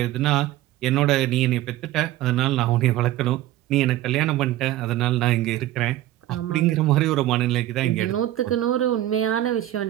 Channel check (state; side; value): quieter; left; 14.3 dB